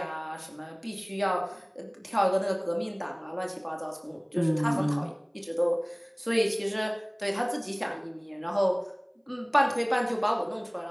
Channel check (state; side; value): identical; both; correlation 1.00